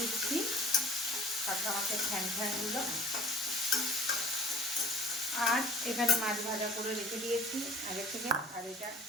কাঁকড়া মাছের ফ্যানগুলো। আর এখানে মাছ ভাজা করে রেখে দিয়েছি আগে থেকে। আর এটা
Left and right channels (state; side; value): normal; both; correlation 0.50